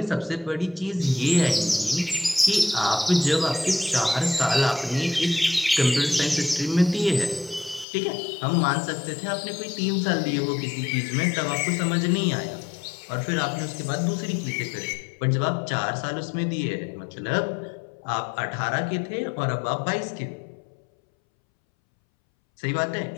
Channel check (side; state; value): right; drops out; at 7.9 s